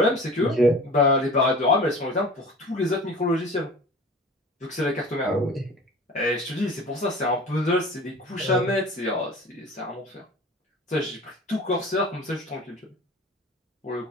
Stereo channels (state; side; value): normal; both; correlation 0.39